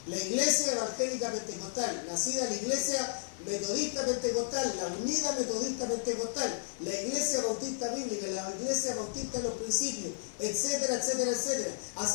La iglesia evangélica pentecostal, nacida la iglesia metodista pentecostal, la unida metodista pentecostal, la iglesia bautista bíblica, la iglesia bautista de los principios, etcétera, etcétera, etcétera.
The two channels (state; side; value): silent; right; 56 dB below the other